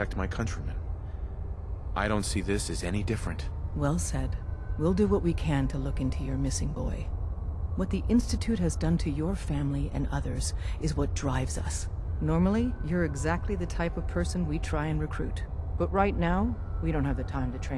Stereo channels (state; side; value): identical; both; correlation 1.00